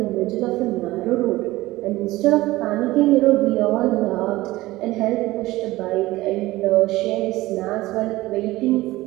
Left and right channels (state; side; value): quieter; left; 18.0 dB